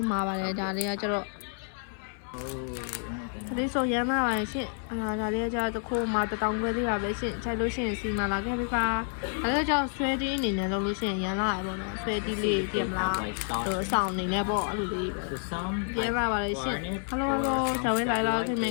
မာပါတယ်ဒါလေးကကျတော့ဒါလေးဆိုရမ်းလာပါရှင်ဒါလေးကကျတော့တစ်ခုမှ1000ခွဲသေးပါပဲရှင်ခြိုက်လို့ရှိရင်စီမာလာခဲ့ပြီပါဒါလေးကကျတော့ဆွဲတီးအနေနဲ့လုပ်လို့ရှိရင်ရမ်းလာရပေါ့နော်ဆွဲတီးလေးပြင်မလားအဆောင်အနေနဲ့ပေါ့အဲ့လိုလေးပဲရမ်းလာပါလေရှင် hello 小薇来了可以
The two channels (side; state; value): right; silent; 56 dB below the other